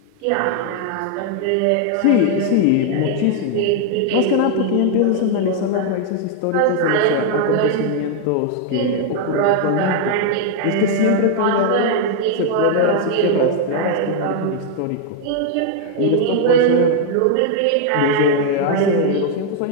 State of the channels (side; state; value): both; different; correlation 0.00